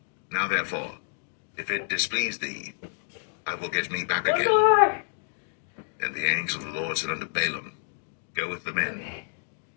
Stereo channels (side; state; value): right; silent; digital silence